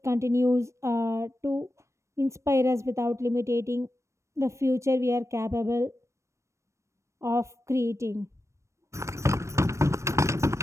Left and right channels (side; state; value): left; late; 0.14 ms